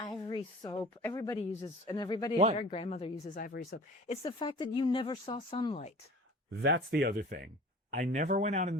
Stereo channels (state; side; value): normal; both; correlation 0.42